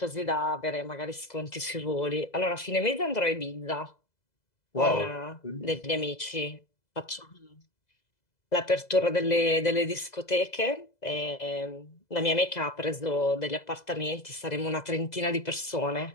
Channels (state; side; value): late; right; 2.0 ms